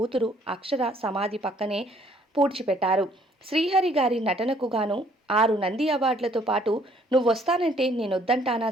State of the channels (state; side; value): normal; both; correlation 0.62